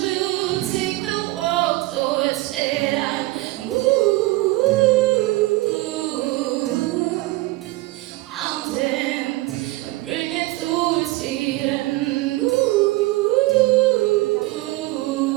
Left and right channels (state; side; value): quieter; left; 19.7 dB